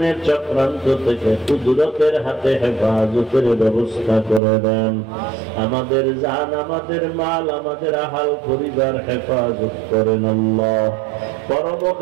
চক্রান্ত থেকে কুদরতের হাতে হেফাজতের ব্যবস্থা করে দেন। আমাদের জান, আমাদের মাল, আমাদের আহাল পরিবার হেফাজত করেন আল্লাহ।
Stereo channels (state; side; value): drops out; left; at 4.4 s